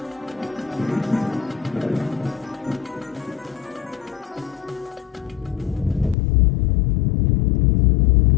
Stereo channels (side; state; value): right; drops out; at 6.2 s